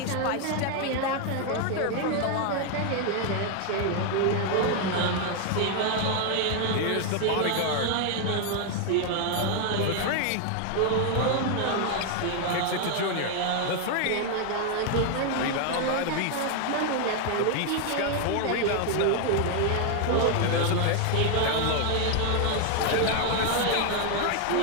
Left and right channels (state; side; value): different; both; correlation 0.00